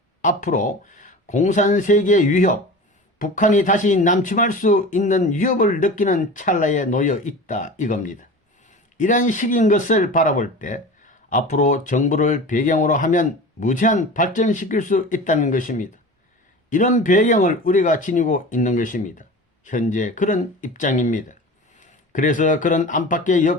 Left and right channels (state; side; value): normal; both; correlation 0.34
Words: 앞으로 공산세계의 위협, 북한이 다시 남침할 수 있는 위협을 느끼는 찰나에 놓여 있다 이겁니다. 이런 식인 것을 바라볼 때 앞으로 정부를 배경으로 하면 무제한 발전시킬 수 있다는 것입니다. 이런 배경을 우리가 지니고 있는 것입니다. 현재 그런 입장입니다. 그래서 그런 안팎의